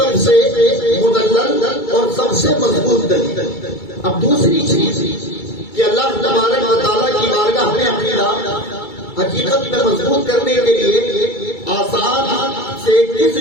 سے مدلل اور سب سے مضبوط دلیل۔ اب دوسری چیز کہ اللہ تبارک و تعالیٰ کی بارگاہ میں عقیدہ حقیقت میں مضبوط کرنے کے لیے آسان سے کس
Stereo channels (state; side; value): late; right; 2.3 ms